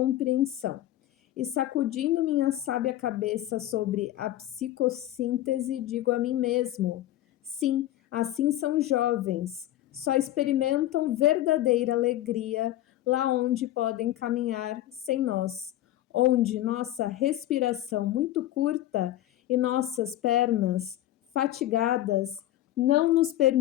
E sacudindo minha sábia cabeça sobre a psicossíntese, digo a mim mesmo: sim, assim são jovens, só experimentam verdadeira alegria lá onde podem caminhar sem nós, onde nossa respiração muito curta e nossas pernas fatigadas não nos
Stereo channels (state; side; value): quieter; right; 14.0 dB